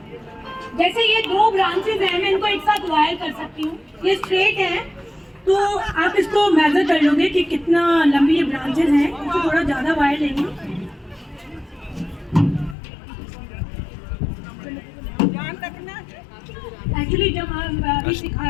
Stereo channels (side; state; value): right; drops out; at 12.8 s